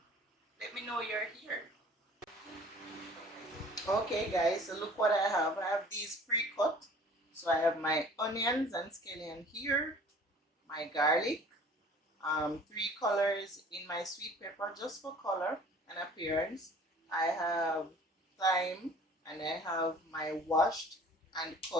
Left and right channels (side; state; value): both; normal; correlation 0.49